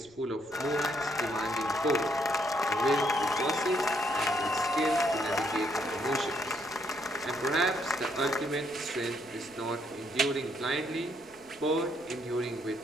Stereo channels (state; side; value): noise; left; rumble, 28 dB below the sound